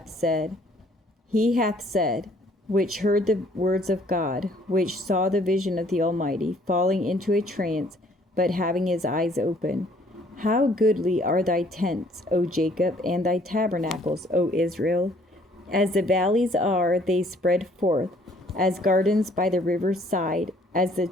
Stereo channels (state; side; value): normal; both; correlation 0.61